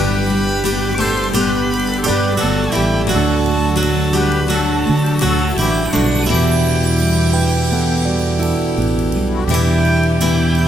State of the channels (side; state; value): both; normal; correlation 0.80